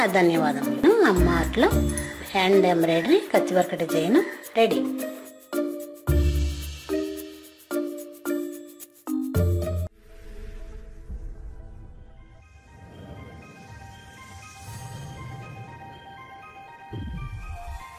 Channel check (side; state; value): both; identical; correlation 1.00